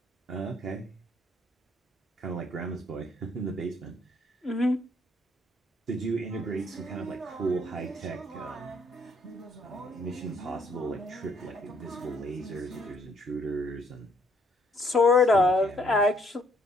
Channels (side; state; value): both; normal; correlation 0.66